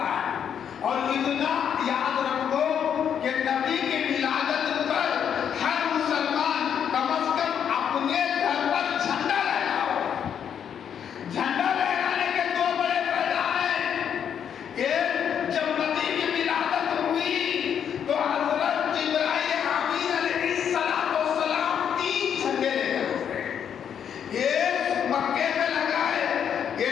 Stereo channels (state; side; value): quieter; right; 8.4 dB